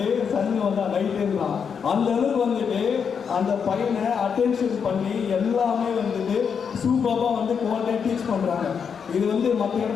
சனி வந்தால் நைட்டுன்றான். அந்த அளவுக்கு வந்துட்டு அந்த பையனை அட்டென்ஷன் பண்ணி எல்லாமே வந்துட்டு சூப்பராக வந்து குவாலிட்டியாக டீச் பண்ணுறாங்க. இது வந்து மற்ற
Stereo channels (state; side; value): quieter; right; 6.7 dB